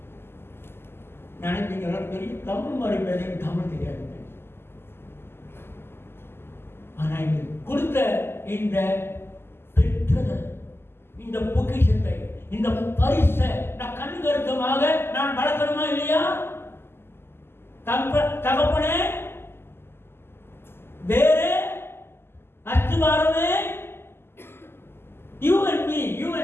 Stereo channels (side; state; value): right; late; 0.12 ms